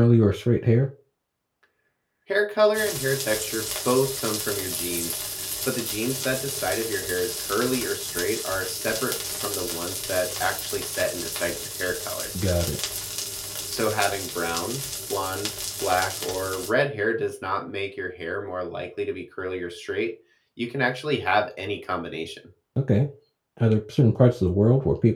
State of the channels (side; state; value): both; identical; correlation 1.00